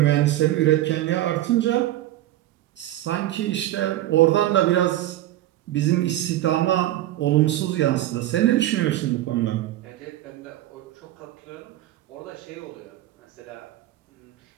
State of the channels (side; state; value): left; quieter; 14.5 dB